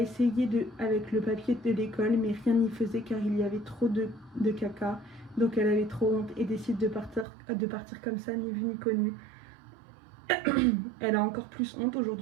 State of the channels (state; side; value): drops out; left; at 7.2 s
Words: avec le papier de l'école, mais rien n'y faisait car il y avait trop de caca. Donc elle avait trop honte et décide de partir comme ça, ni vu ni connu. Elle a encore plus honte